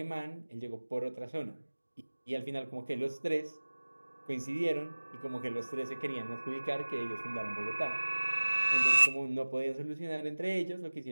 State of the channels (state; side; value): inverted; both; correlation -1.00